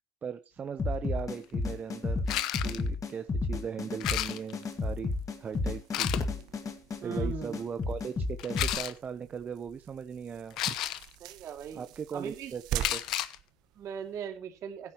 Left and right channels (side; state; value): both; normal; correlation 0.61